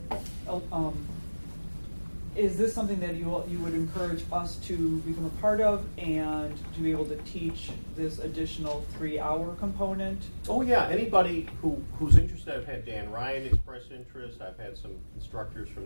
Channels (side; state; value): both; inverted; correlation -1.00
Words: Is this something that you would encourage us to become a part of and to be able to teach this additional 3-hour component? Oh yeah, anybody who's interested. I've had Dan Ryan express interest. I've had some instructors